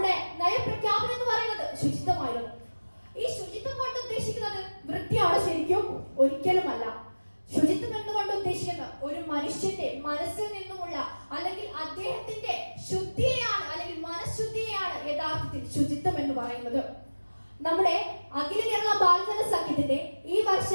നയപ്രഖ്യാപനം എന്ന് പറയുന്നത് ശുചിത്വമായിരുന്നു. ഈ ശുചിത്വം കൊണ്ട് ഉദ്ദേശിക്കുന്നത് വൃത്തിയാണ് ശരിക്കും? ഒരിക്കലുമല്ല. ശുചിത്വം എന്നുകൊണ്ട് ഉദ്ദേശിക്കുന്നത് ഒരു മനുഷ്യന്റെ മനസ്സിൽ നിന്നുമുള്ള അല്ലെങ്കിൽ അദ്ദേഹത്തിന്റെ ശുദ്ധിയെയാണ് അല്ലെങ്കിൽ മനഃശുദ്ധിയെയാണ് യഥാർത്ഥത്തിൽ ശുചിത്വം എന്ന് പറയുന്നത്. നമ്മുടെ അഖില കേരള ബാലജന സഖ്യത്തിന്റെ ഈ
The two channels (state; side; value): inverted; both; correlation -1.00